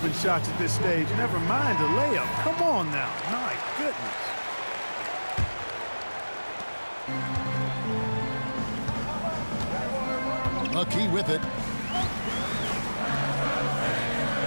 shots at this stage, never mind a layup. Come on now. My goodness. McKee with it.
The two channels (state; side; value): inverted; both; correlation -1.00